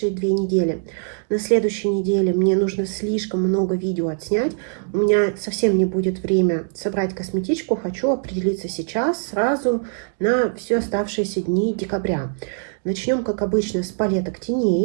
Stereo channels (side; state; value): left; silent; digital silence